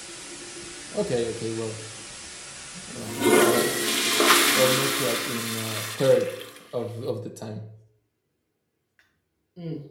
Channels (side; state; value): both; identical; correlation 1.00